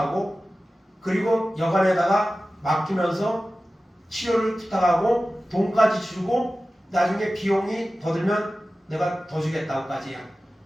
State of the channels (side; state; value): both; normal; correlation 0.95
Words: 그리고 여관에다가 맡기면서 치료를 부탁하고 돈까지 주고 나중에 비용이 더 들면 내가 더 주겠다고까지요.